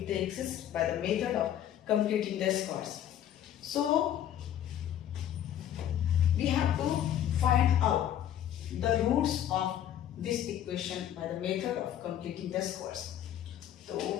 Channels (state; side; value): quieter; right; 10.8 dB